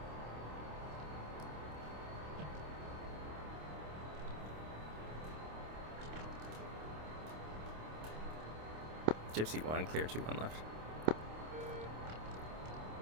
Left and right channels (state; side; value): late; left; 26 ms